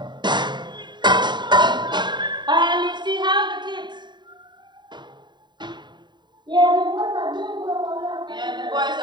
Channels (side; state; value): left; late; 0.22 ms